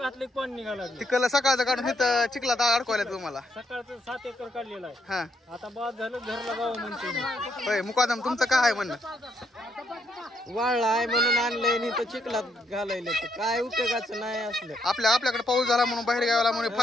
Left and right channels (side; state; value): both; normal; correlation 0.75